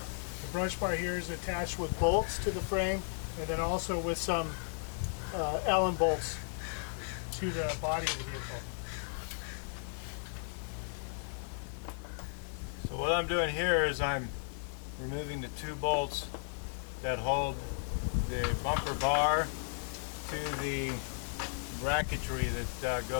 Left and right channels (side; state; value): right; silent; digital silence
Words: The brush bar here is attached with bolts to the frame, and then also with some Allen bolts to the body of the vehicle. So what I'm doing here is I'm removing the 2 bolts that hold the bumper bar to the bracketry that